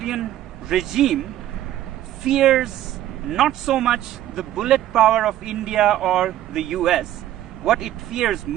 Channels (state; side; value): quieter; left; 13.0 dB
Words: regime, fears not so much the bullet power of India or the US. What it fears